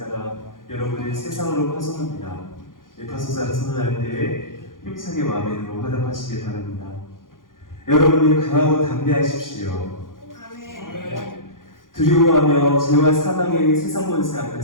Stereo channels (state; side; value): late; right; 0.90 ms